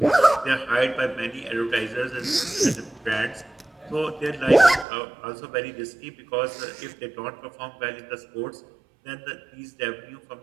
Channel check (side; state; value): left; drops out; at 4.9 s